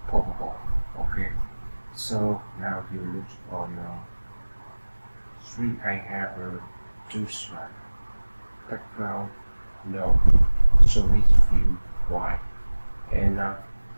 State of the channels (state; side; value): inverted; both; correlation -1.00